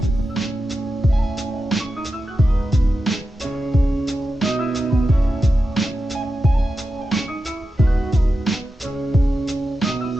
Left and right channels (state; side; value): normal; both; correlation 0.91